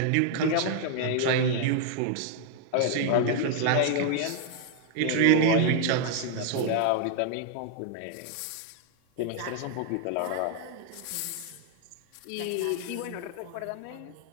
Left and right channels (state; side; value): different; both; correlation 0.00